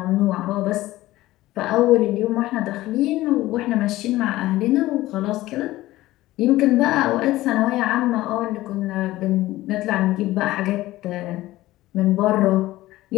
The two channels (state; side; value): quieter; right; 16.8 dB